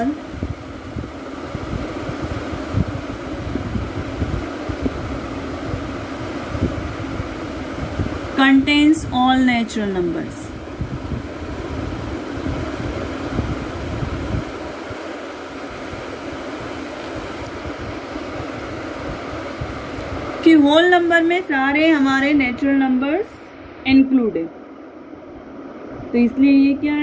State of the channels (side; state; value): both; identical; correlation 1.00